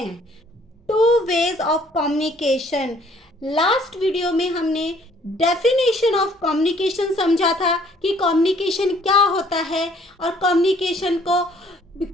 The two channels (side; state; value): both; normal; correlation 0.60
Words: Two ways of communication. Last video में हमने डेफिनेशन ऑफ कम्युनिकेशन समझा था कि कम्युनिकेशन क्या होता है और कम्युनिकेशन को